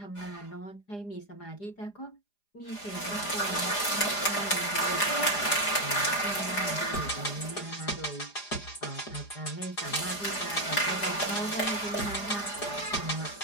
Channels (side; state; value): right; late; 4.9 ms